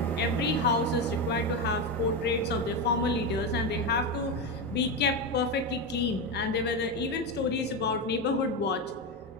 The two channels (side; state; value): both; normal; correlation 0.14